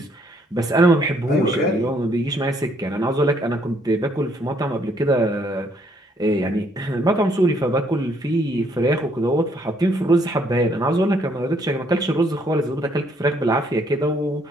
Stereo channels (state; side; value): normal; both; correlation 0.68